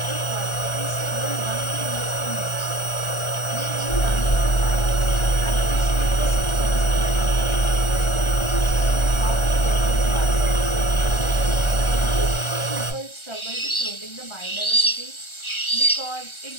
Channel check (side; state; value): right; late; 1.4 ms